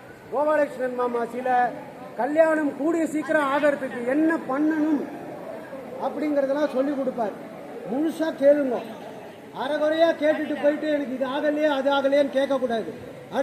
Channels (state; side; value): identical; both; correlation 1.00